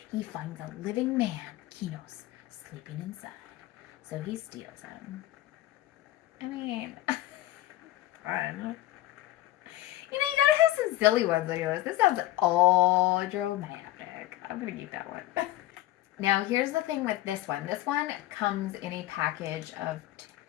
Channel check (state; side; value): quieter; right; 15.6 dB